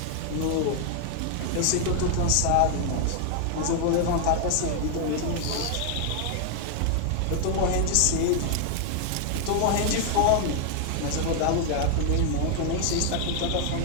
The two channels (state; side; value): different; both; correlation 0.00